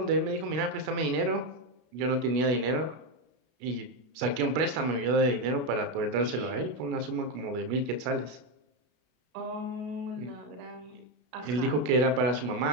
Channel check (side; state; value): left; late; 32 ms